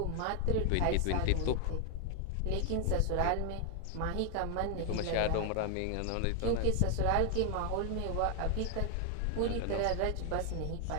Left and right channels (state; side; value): different; both; correlation 0.00